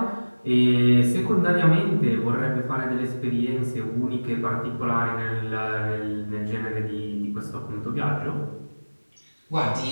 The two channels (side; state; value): both; inverted; correlation -1.00